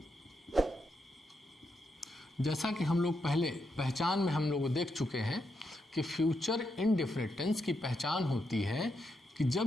जैसा कि हम लोग पहले पहचान में हम लोग देख चुके हैं कि फ्यूचर इंडेफिनिट टेंस की पहचान होती है कि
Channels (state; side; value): normal; both; correlation 0.82